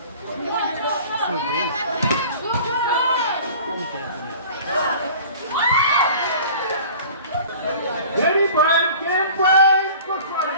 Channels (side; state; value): both; inverted; correlation -0.44